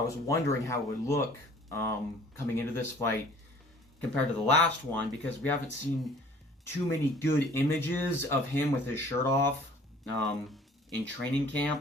was wondering how it would look coming into this fight compared to the last one, because we haven't seen too many good images of him with his shirt off in training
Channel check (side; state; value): both; normal; correlation 0.52